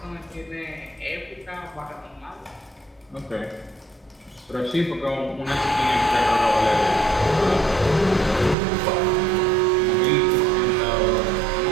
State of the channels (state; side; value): drops out; left; at 8.6 s